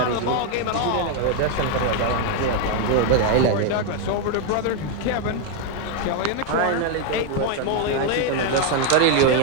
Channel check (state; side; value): different; both; correlation 0.01